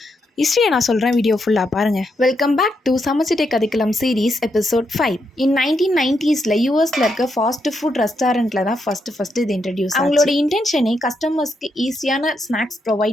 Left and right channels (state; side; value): normal; both; correlation 0.81